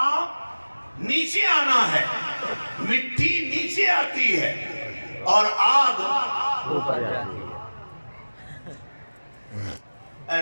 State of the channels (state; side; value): inverted; both; correlation -1.00